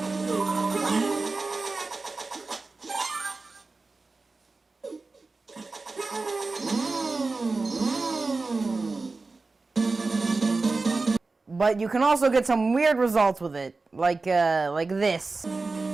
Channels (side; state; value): left; quieter; 3.7 dB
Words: But you can also get some weird results with it, like this.